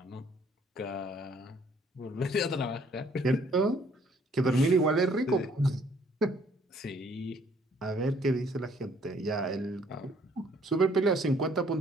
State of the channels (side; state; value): both; normal; correlation 0.62